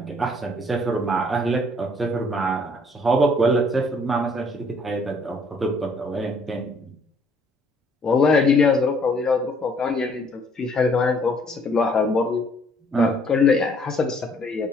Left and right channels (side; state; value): both; normal; correlation 0.62